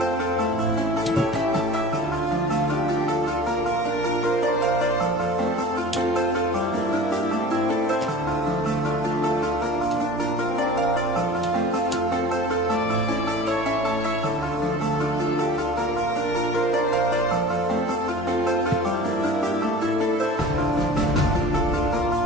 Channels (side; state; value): both; normal; correlation 0.40